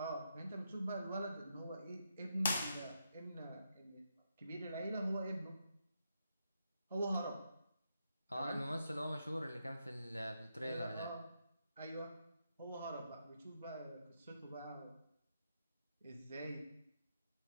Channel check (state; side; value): inverted; both; correlation -0.82